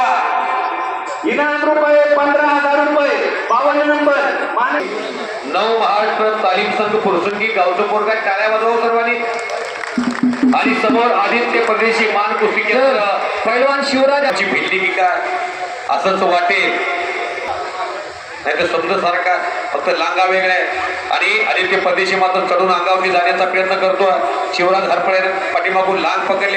इनाम रुपये 15,000 रुपये. 52 नंबर माने 9 महाराष्ट्र तालीम संघ फुरसंगी गावचं पोरगा टाळ्या वाजवा सर्वांनी. आणि समोर आदित्य परदेशी मान कुस्ती केंद्र पैलवान शिवराजाची भिल्ली की काय असंच वाटेल, नाही तर समजा सारखा फक्त लांगा वेगळा आहे. आणि आदित्य परदेशी मात्र चढून अंगावरती जाण्याचा प्रयत्न करतो. शिवराज हरपळे पाठीमागून लांग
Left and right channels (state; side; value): identical; both; correlation 1.00